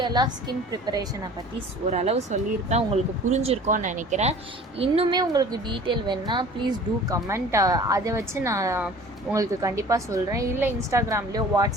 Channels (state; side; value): normal; both; correlation 0.46